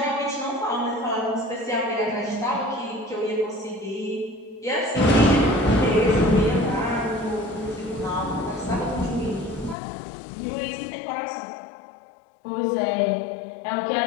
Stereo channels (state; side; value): drops out; right; at 9.8 s